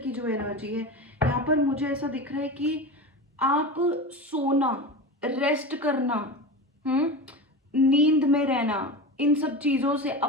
जो एनर्जी है, यहाँ पर मुझे ऐसा दिख रहा है कि आप सोना, रेस्ट करना, नींद में रहना, इन सब चीजों से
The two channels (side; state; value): both; normal; correlation 0.26